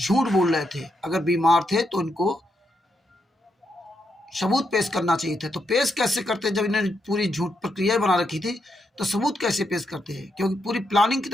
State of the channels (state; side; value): normal; both; correlation 0.81